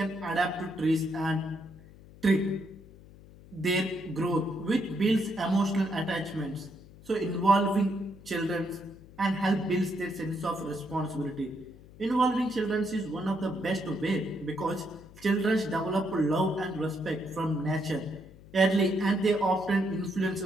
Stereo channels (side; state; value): left; noise; hum, 21 dB below the sound